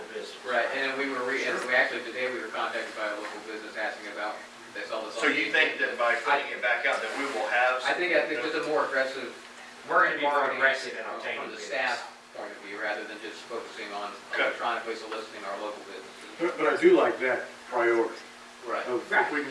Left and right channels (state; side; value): identical; both; correlation 1.00